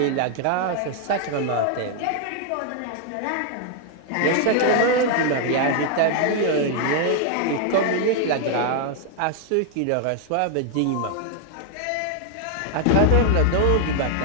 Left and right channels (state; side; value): different; both; correlation 0.00